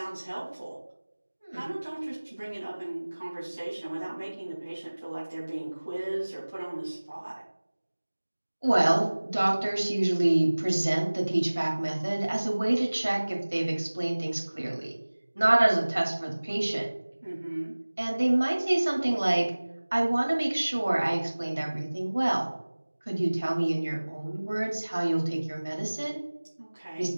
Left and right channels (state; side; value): inverted; both; correlation -1.00